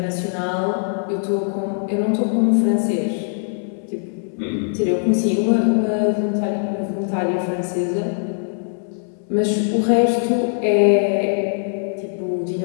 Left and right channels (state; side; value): silent; right; 65 dB below the other